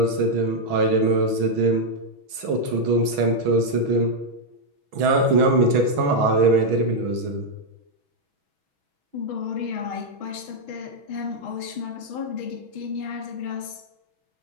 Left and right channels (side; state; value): left; late; 6.2 ms